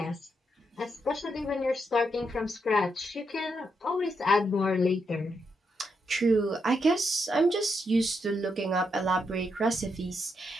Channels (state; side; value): normal; both; correlation 0.81